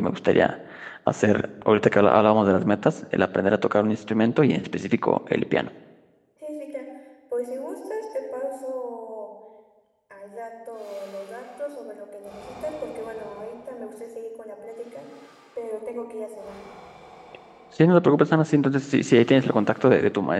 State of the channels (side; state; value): both; identical; correlation 1.00